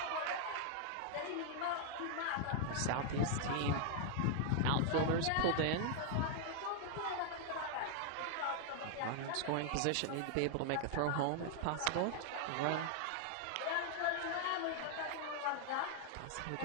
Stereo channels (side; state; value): both; different; correlation 0.00